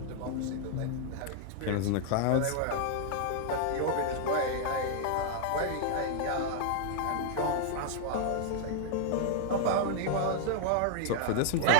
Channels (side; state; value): both; different; correlation -0.01